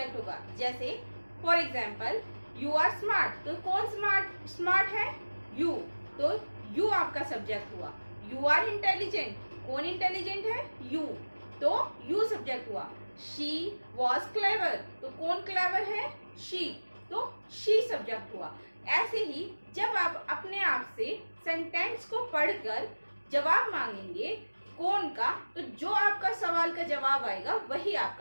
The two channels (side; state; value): both; inverted; correlation -1.00